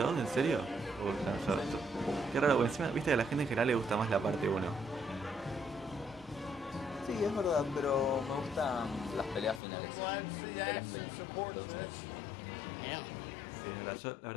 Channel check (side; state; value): right; drops out; at 9.6 s